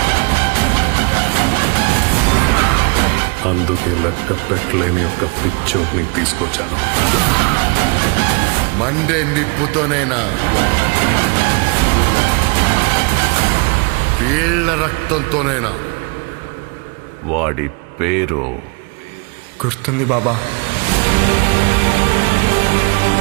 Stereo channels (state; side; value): quieter; left; 32.4 dB